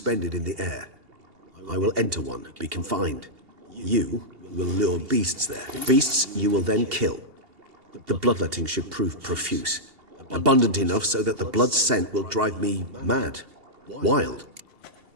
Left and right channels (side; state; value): left; late; 2.8 ms